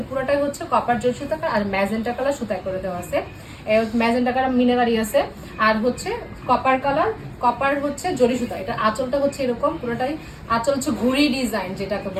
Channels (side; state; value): both; identical; correlation 1.00